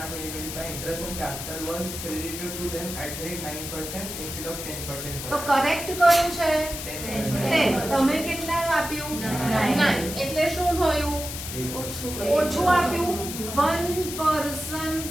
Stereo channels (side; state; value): left; noise; hiss, 7 dB below the sound